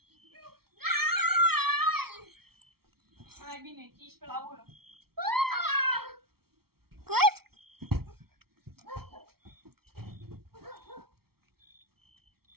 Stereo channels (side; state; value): left; late; 0.95 ms